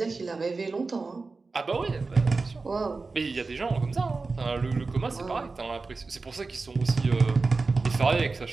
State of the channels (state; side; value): quieter; left; 4.0 dB